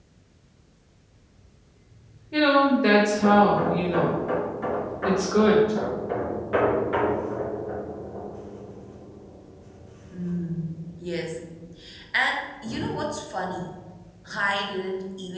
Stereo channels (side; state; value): both; identical; correlation 1.00